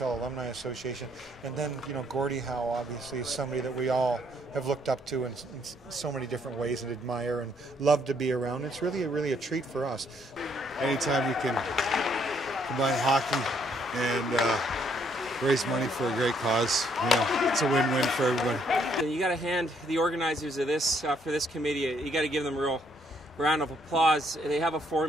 Alumni Association. And then, you know, Gordie Howe obviously is somebody that we all have looked up to in so many different ways and admire and love to be around. It's really a treat for us. Anytime you can combine hockey and raise money for a great cause, you know, it's a win-win for everybody. You got to hand the organizers of this for this committee. You got to give them a real round of applause. They have a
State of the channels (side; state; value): both; normal; correlation 0.69